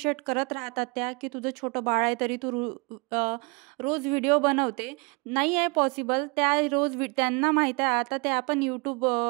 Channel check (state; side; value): quieter; left; 30.7 dB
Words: करत राहतात त्या, की तुझं छोटं बाळ आहे तरी तू रोज व्हिडिओ बनवते. नाही आहे पॉसिबल. त्या त्यांना माहीत आहे आता त्या पण